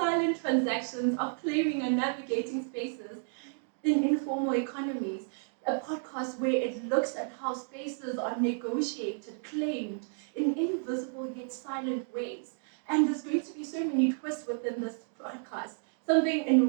transactions of claiming and navigating spaces in informal economies. A podcast where it looks at how spaces are negotiated, claimed in invisible yet silent ways. And there's going to be so many twists within this podcast, something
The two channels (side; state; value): left; silent; digital silence